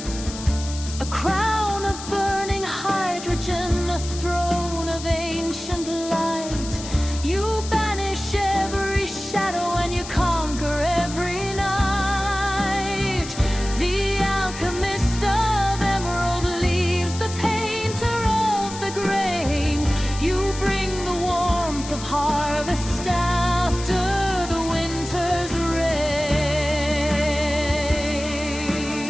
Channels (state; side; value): noise; left; hiss, 11 dB below the sound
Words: A crown of burning hydrogen, a throne of ancient light. You banish every shadow and you conquer every night. The alchemist of emerald leaves the painter of the grain. You bring the warmth of harvest after the winter's rain.